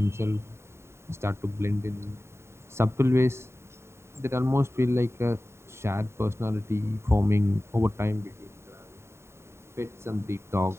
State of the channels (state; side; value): late; left; 0.13 ms